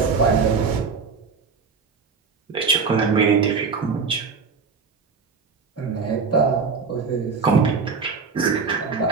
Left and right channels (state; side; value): quieter; left; 5.1 dB